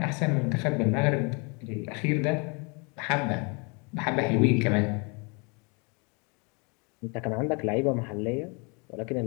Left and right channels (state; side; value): quieter; right; 32.0 dB